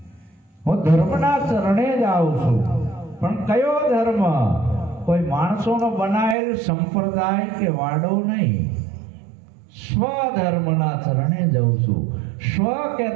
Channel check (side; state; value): left; drops out; at 6.4 s